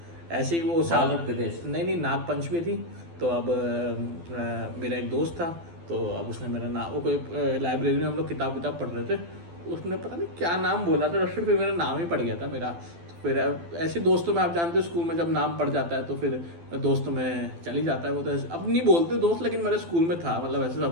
ऐसे ही। वो बाल रखते थे ऐसे? नहीं नाग पंचमी थी तो अब मेरा एक दोस्त था तो अब उसने मेरा नाम, वो कोई लाइब्रेरी में हम लोग किताब पढ़ रहे थे, उसने पता नहीं क्या नाम बोला था, फिर मेरा नाम ही पड़ गया था मेरा। फिर ऐसे दोस्तों में आप जानते हो स्कूल में जब नाम पड़ जाता है तो फिर दोस्तों में चल ही जाता है वो। तो अब नहीं बोलते दोस्त, लेकिन मेरे स्कूल में था, मतलब ऐसे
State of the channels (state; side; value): late; left; 12 ms